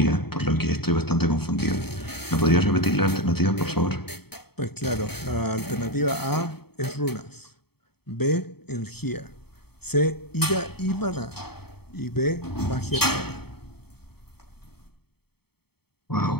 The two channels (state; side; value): late; right; 0.96 ms